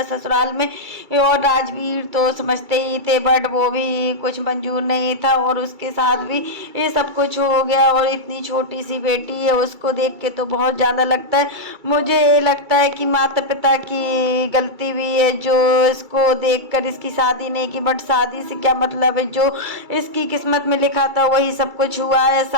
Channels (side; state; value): left; late; 2.3 ms